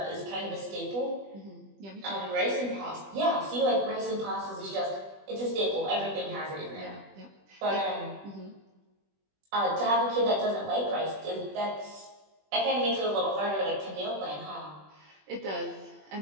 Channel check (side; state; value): left; late; 20 ms